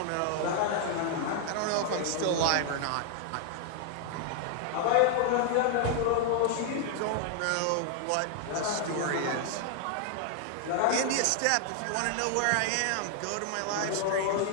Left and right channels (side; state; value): both; different; correlation 0.00